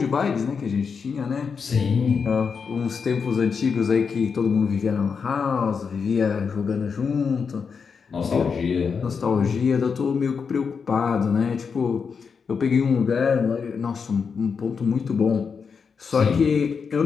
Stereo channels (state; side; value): quieter; right; 5.8 dB